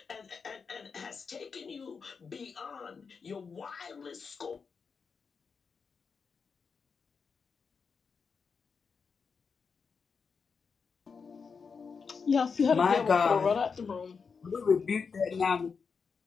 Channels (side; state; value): right; quieter; 5.5 dB